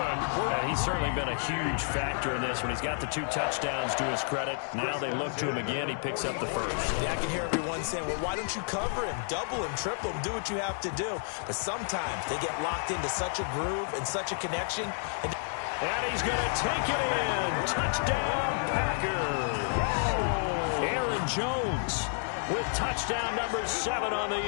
And he's certainly been a huge factor in this one. He's got the 2 touchdowns to his credit. Now they look to him again. He picks up the 1st. Yeah, I can hear everyone saying, well, why don't you cover him, double him, triple him, do what you have to do. But sometimes they get locked into such a groove and such a connection. And he's going to take it in. Touchdown, Packers. Aaron Jones with touchdown number 7 on the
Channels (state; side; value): silent; right; 58 dB below the other